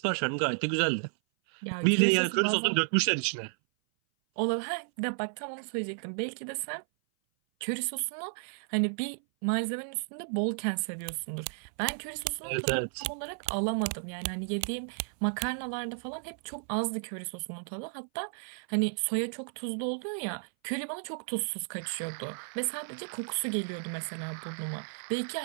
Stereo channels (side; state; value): left; silent; 56 dB below the other